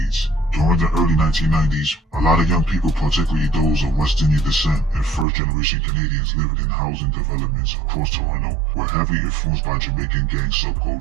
During the early 1990s, a lot of young people, particularly those of West Indian descent and first-generation Canadians living in housing developments across Toronto, were heavily influenced by Jamaican gang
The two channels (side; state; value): left; drops out; at 5.2 s